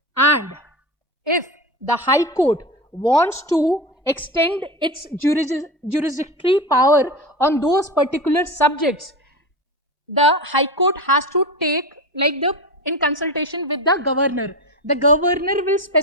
And if the High Court wants to extend its jurisdictory power on those particular subjects, the High Court has to take in consultation with the governor. The governor will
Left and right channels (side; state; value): both; normal; correlation 0.23